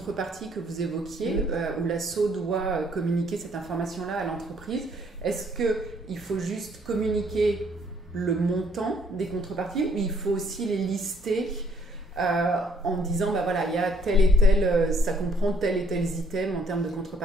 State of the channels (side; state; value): both; normal; correlation 0.65